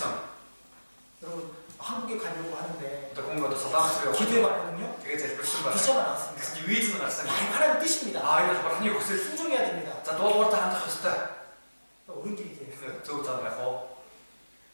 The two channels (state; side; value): inverted; both; correlation -1.00